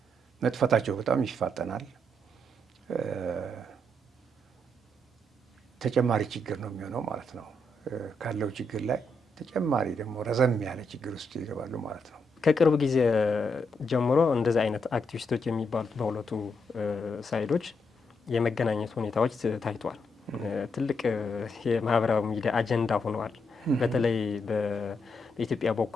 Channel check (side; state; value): both; normal; correlation 0.79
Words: መጥፋታቸው በጣም ይፋጠናል። ተጨማሪ ችግር ነው የሚሆነው ማለት ነው። ካለው ችግር ላይ ተጨማሪ ደግሞ ረዘም ያለ ችግር ውስጥ ይገባሉ ማለት ነው። ከቅርብ ጊዜ ጀምሮ እንደዚህ አይነት አክቲቪስቶች የሚባሉት በሁለቱ ሳይዶች የመገናኘት ሁኔታዎች ታይቷል። ትልቅ የማህበራዊ ሚዲያ አጀንዳ ሆነዋል። በተለይ በኢትዮጵያ